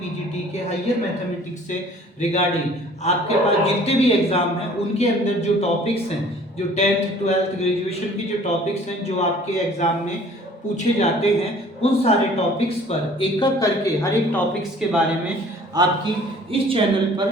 के हायर मैथमेटिक्स से रिगार्डिंग आपके पास जितने भी एग्जाम हैं उनके अंदर जो टॉपिक्स हैं, जो 10th 12th ग्रेजुएशन की जो टॉपिक्स हैं जो आपके एग्जाम में पूछे जाते हैं, उन सारे टॉपिक्स पर एक एक करके हर एक टॉपिक्स के बारे में आपकी इस चैनल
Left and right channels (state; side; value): normal; both; correlation 0.52